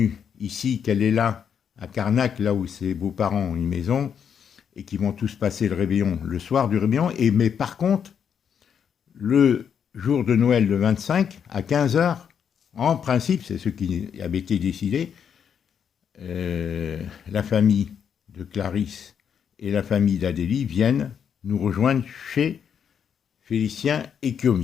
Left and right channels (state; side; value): quieter; right; 7.7 dB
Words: ici, qu'elle est là à Carnac, là où ses beaux-parents ont une maison et qui vont tous passer le réveillon le soir du réveillon. Mais par contre, le jour de Noël, le 25, à 15h, en principe, c'est ce qui avait été décidé, la famille de Clarisse et la famille d'Adélie viennent nous rejoindre chez Félicien et